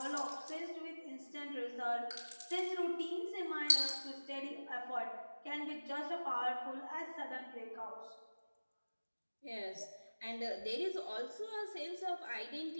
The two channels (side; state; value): both; inverted; correlation -1.00